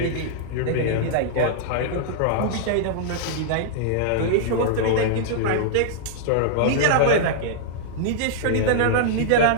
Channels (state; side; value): different; both; correlation -0.01